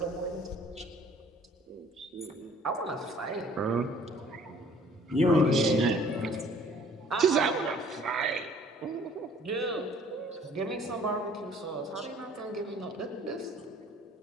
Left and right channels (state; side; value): normal; both; correlation 0.54